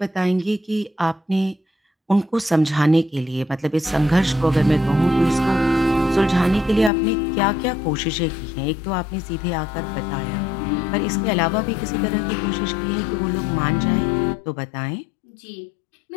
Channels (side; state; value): right; drops out; at 6.9 s